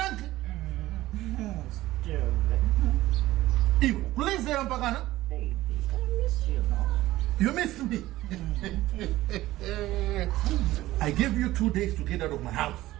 Ew, please say Ampagana. Baby, I miss you now. You missed me. I gave you 2 days to get out of my house.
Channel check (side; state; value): left; quieter; 16.4 dB